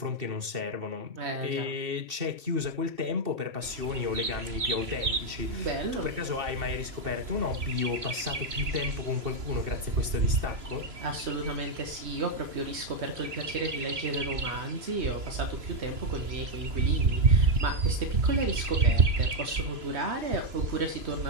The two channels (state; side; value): late; left; 2.7 ms